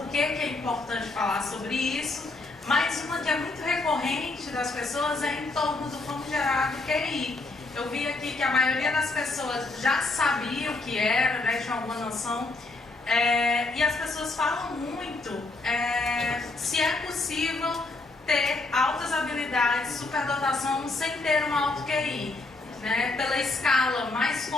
que é importante falar sobre isso, mas uma que é muito recorrente das pessoas é em torno do famigerado QI. Eu vi aqui que a maioria das pessoas já sabia o que era, né, tinha alguma noção, e as pessoas falam muito se é possível ter altas habilidades, superdotação sem ter um alto QI. Né? Pela escala mais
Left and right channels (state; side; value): quieter; right; 3.3 dB